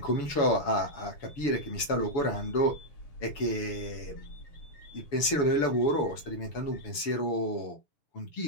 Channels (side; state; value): right; late; 7.0 ms